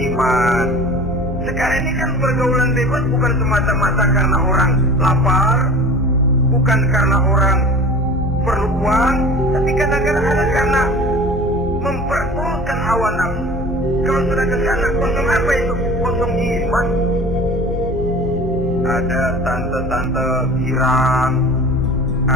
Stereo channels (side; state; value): both; normal; correlation 0.40